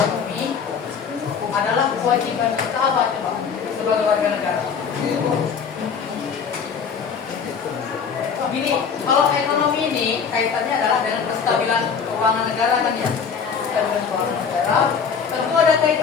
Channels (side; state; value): right; quieter; 6.4 dB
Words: adalah kewajiban kita apa coba sebagai warga negara? Gini, kalau ekonomi ini kaitannya adalah dengan kestabilan keuangan negara kan ya. Kestabilan keuangan negara tentu ada